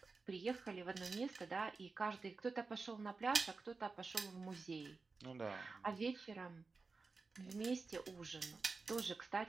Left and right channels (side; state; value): left; quieter; 4.2 dB